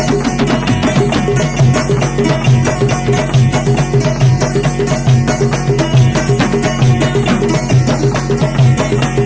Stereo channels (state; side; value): identical; both; correlation 1.00